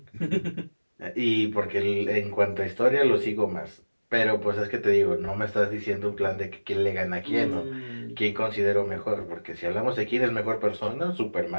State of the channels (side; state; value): both; inverted; correlation -1.00